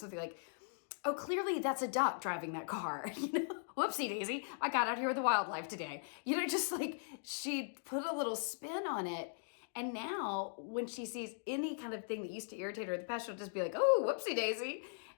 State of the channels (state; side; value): silent; right; digital silence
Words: something like, oh, clearly that's a duck driving that car. You know, whoopsie daisy, I got out here with the wildlife today. You know, just like she'd put a little spin on it. And now when she sees any kind of thing that used to irritate her in the past, she'll just be like, oh, whoopsie daisy.